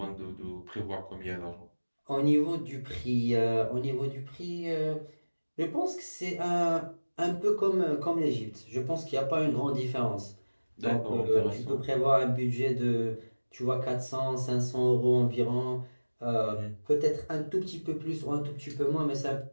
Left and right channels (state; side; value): inverted; both; correlation -1.00